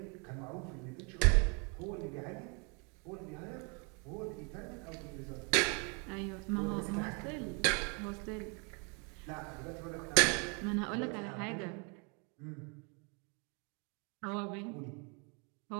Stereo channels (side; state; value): left; quieter; 34.3 dB